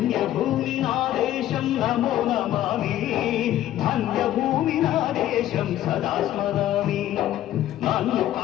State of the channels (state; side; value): quieter; right; 13.0 dB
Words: నా దేశం నమో నమామి ధన్యభూమి నా దేశం సదా స్మరామి నన్ను